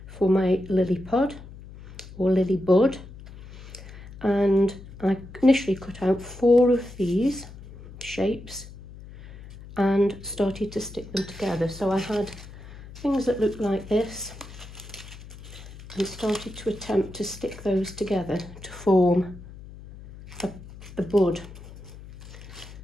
for my lily pod or lily bud, and I initially cut out 4 of these shapes and started to stick them together. So I had things that looked like this and started to attempt to stick those together to form the bud.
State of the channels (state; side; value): noise; left; hum, 16 dB below the sound